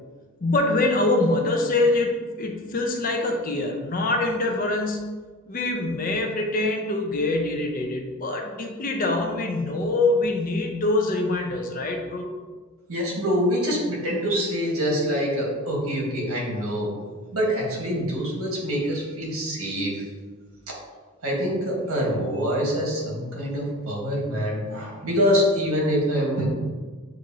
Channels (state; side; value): normal; both; correlation 0.35